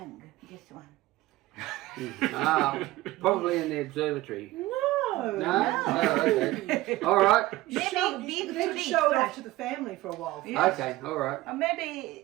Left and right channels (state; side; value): quieter; left; 18.0 dB